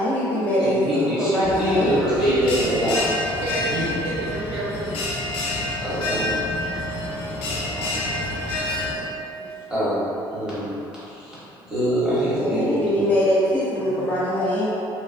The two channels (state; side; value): normal; both; correlation 0.54